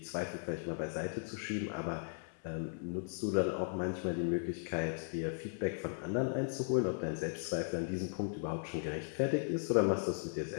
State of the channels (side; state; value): right; silent; 53 dB below the other